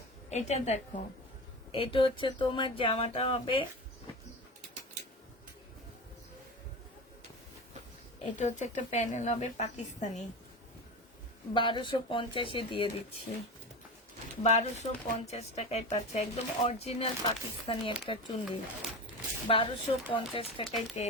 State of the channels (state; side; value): normal; both; correlation 0.26